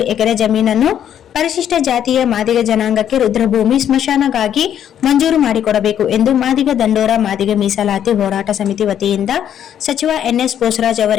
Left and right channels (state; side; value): quieter; right; 9.9 dB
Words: ಎಕರೆ ಜಮೀನನ್ನು ಪರಿಶಿಷ್ಟ ಜಾತಿಯ ಮಾದಿಗ ಜನಾಂಗಕ್ಕೆ ರುದ್ರಭೂಮಿ ಸ್ಮಶಾನಗಾಗಿ ಮಂಜೂರು ಮಾಡಿಕೊಡಬೇಕು ಎಂದು ಮಾದಿಗ ದಂಡೋರ ಮಾದಿಗ ಮೀಸಲಾತಿ ಹೋರಾಟ ಸಮಿತಿ ವತಿಯಿಂದ ಸಚಿವ ಎನ್ಎಸ್ ಬೋಸರಾಜ್